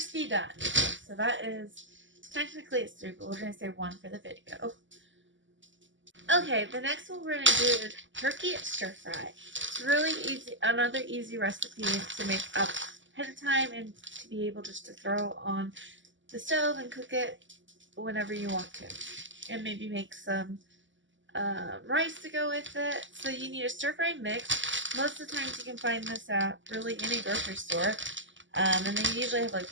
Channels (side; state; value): left; late; 0.55 ms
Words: done. So that is, technically it's 3, but we're going to say 1 for the video. Okay, the next one we're going to do is turkey stir fry. It's really easy, another easy recipe to make up ahead of time and to be able just to throw on the stove and cook it whenever you want to. And maybe make some rice to go with it. So you need a stir fry mix. Most of the times you can find this at really any grocery store. And they usually have